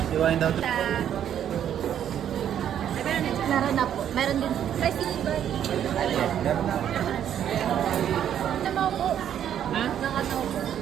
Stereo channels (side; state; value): left; quieter; 9.9 dB